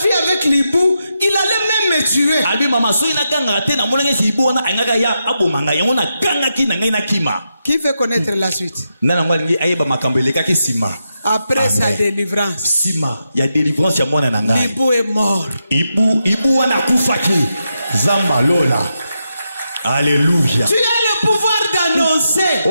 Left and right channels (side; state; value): both; inverted; correlation -0.85